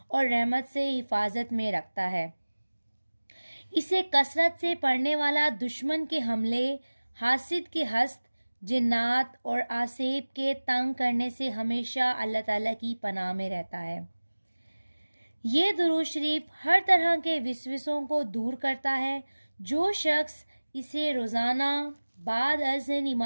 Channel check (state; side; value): inverted; both; correlation -1.00